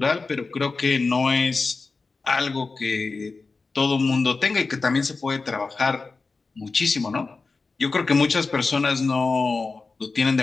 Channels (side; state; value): right; quieter; 4.1 dB